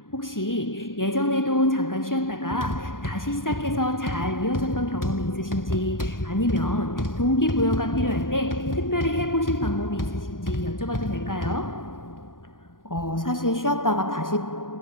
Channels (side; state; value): right; late; 0.90 ms